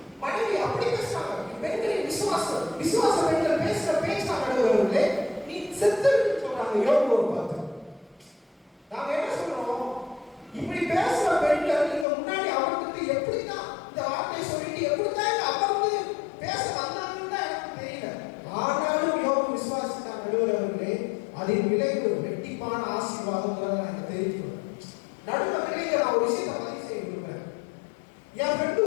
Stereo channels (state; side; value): drops out; right; at 12.1 s